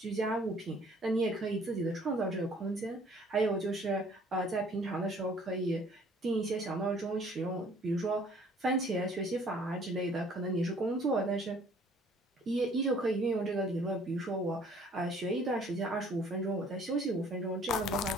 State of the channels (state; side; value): normal; both; correlation 0.56